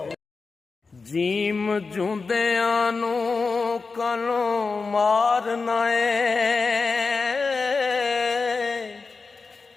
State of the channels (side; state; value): right; quieter; 4.4 dB